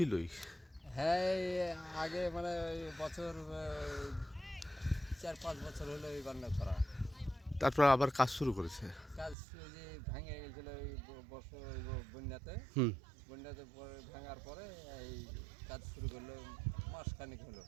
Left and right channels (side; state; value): left; drops out; at 9.3 s